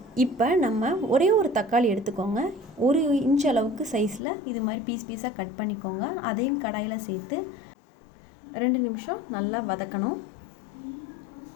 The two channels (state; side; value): drops out; right; at 4.2 s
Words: இப்போ நம்ம ஒரே ஒரு தக்காளி எடுத்துக்கோங்க. 1 இன்ச் அளவுக்கு சைஸில் இது மாதிரி பீஸாக கட் பண்ணிக்கோங்க. அதையும் கடாயில் சேர்த்து 2 நிமிஷம் நல்லா வதக்கணும்.